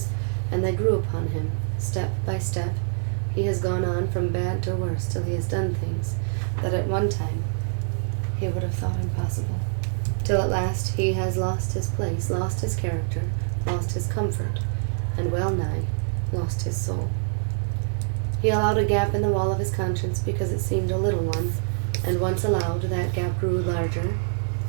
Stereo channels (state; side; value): silent; left; digital silence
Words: and they grew upon him, step by step. He has gone on from bad to worse till he has done things that at one time he would have thought impossible, till at last he has lost his place, lost his character, lost his comfort, and well nigh lost his soul. He allowed a gap in the wall of his conscience because it seemed a little one, and once allowed, that gap grew larger